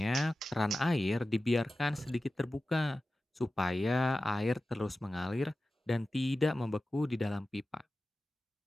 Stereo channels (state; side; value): normal; both; correlation 0.94